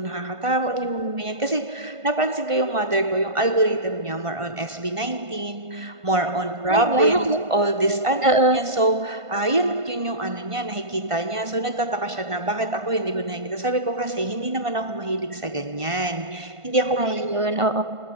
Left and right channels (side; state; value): left; late; 1.5 ms